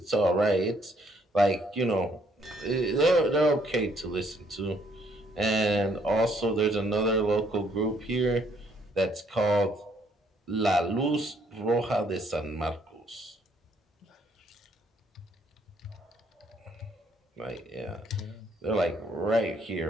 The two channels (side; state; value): both; normal; correlation 0.67